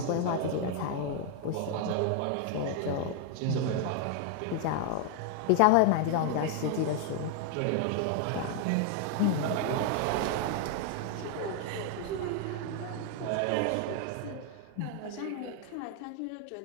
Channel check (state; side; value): different; both; correlation 0.00